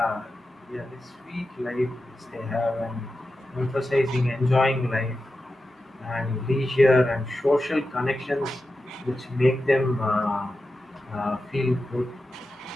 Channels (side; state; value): both; normal; correlation 0.91